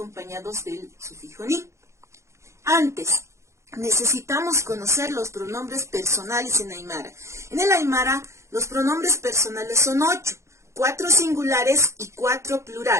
del sufijo ni. Antes, necesitamos conocer los pronombres personales en Aymara. En el Aymara, los pronombres personales son 8, 4 singulares y 4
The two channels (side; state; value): left; late; 0.14 ms